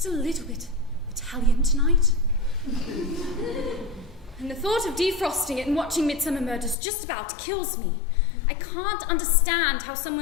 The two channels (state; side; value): drops out; right; at 6.8 s